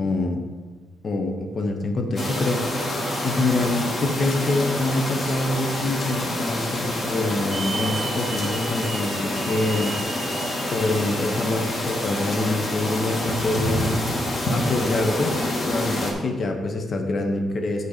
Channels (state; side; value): normal; both; correlation 0.80